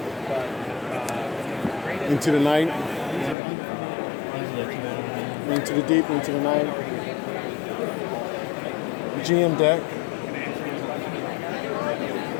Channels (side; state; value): right; drops out; at 3.4 s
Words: Into the Night. Into the Deep, Into the Night. GM deck.